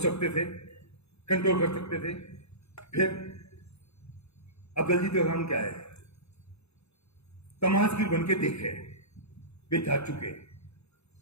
सकते थे, कंट्रोल कर सकते थे। फिर अब दलजीत का काम क्या है? तमाशगीर बन के देखे, वे जा चुके।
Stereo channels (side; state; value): right; late; 0.79 ms